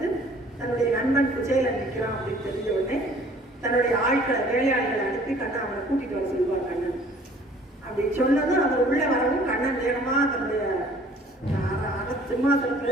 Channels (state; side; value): normal; both; correlation 0.54